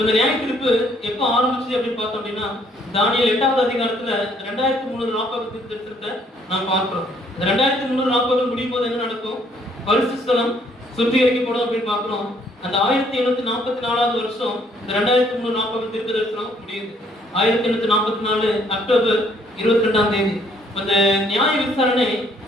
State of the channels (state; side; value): normal; both; correlation 0.65